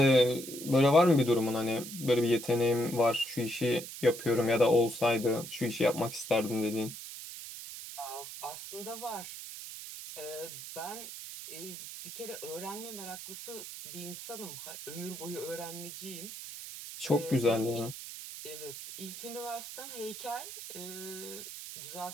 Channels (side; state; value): right; noise; hiss, 10 dB below the sound